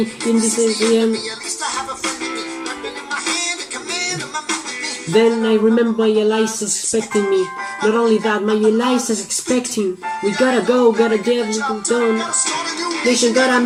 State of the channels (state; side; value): identical; both; correlation 1.00